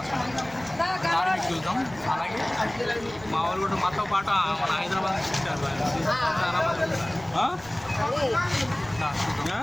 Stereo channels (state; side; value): noise; right; rumble, 21 dB below the sound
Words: ఆశ్రమం. దారి మీకు చూద్దాం. అలాగే మా వాళ్ళు కూడా మాతో పాటు మన హైదరాబాద్ నుంచి వచ్చారు.